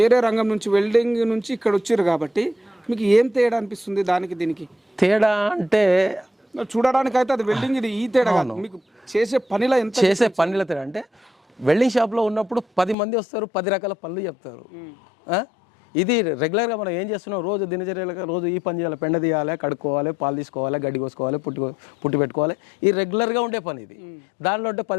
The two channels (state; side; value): drops out; right; at 13.0 s